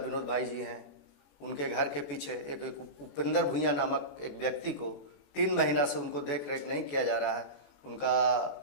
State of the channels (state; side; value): late; right; 21 ms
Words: भाई जी हैं, उनके घर के पीछे एक उपेंद्र भुइयां नामक एक व्यक्ति को 3 महीना से उनको देख रेख नहीं किया जा रहा है। उनका